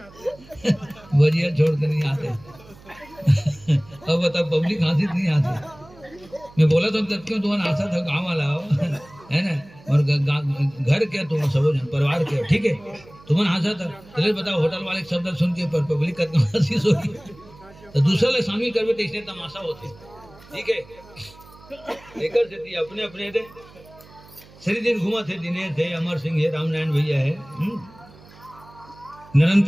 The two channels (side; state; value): right; noise; hum, 23 dB below the sound